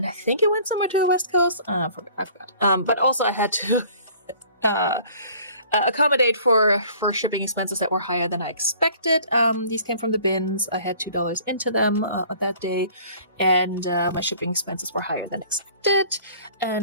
I think it went somewhere to the West Coast. I forgot. But also I had to accommodate for shipping expenses that were higher than I expected. These came from the bins. I had $2 into them that day, and my shipping expenses were higher than expected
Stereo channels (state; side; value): inverted; both; correlation -0.51